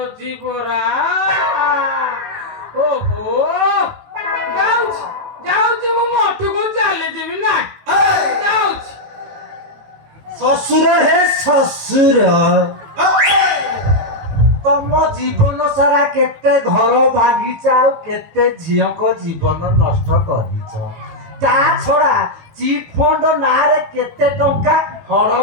ପରା ଓହୋ ଯାଉଛି ଯାଉଛି ମୁଁ ମଠକୁ ଚାଲିଯିବି ନା ଯାଉଛି ଶ୍ୱଶୁର ହେ ଶ୍ୱଶୁର ତମ ଜୀବନ ସାରା କେତେ ଘର ଭାଙ୍ଗିଛ ଆଉ କେତେ ଝିଅଙ୍କ ଜୀବନ ନଷ୍ଟ କରିଛ ତା ଛଡା ଚିଟ୍ ଫଣ୍ଡ ନାଁରେ କେତେ ଟଙ୍କା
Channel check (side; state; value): left; late; 18 ms